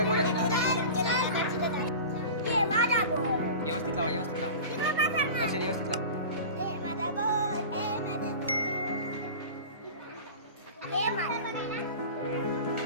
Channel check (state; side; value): inverted; both; correlation -0.34